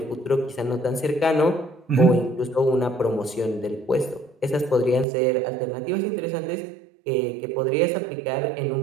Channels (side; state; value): left; drops out; at 5.1 s